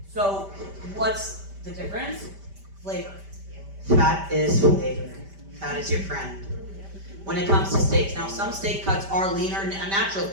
So, what's the difference? Flavor. Fat is flavor. Fat is your friend. When it comes to steaks, now some steak cuts are leaner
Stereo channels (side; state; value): left; late; 5.1 ms